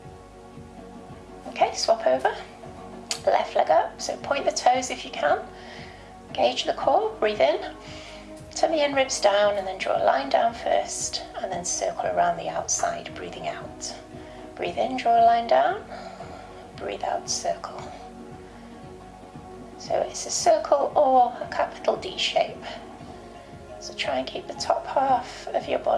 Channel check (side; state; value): both; identical; correlation 1.00